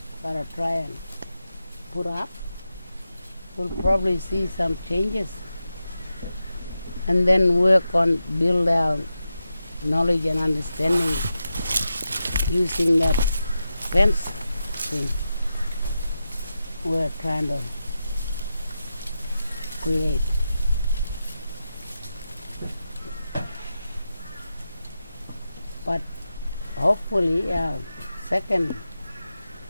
gotta try and put up, we'll probably see some changes and then work on build our knowledge and understanding using that fence thing we're trying to create. But hopefully second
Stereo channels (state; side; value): inverted; both; correlation -0.89